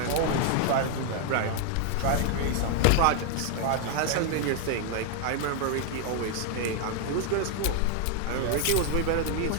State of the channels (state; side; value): different; both; correlation 0.00